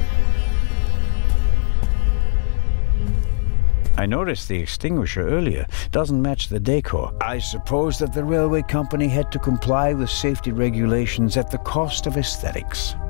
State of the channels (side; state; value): right; silent; digital silence